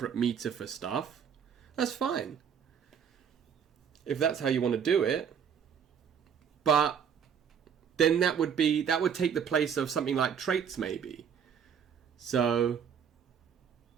meter for stuff. That's fine. If that's how you want to do it. But then that would take the place of something like traits, maybe. So,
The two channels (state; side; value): quieter; left; 7.6 dB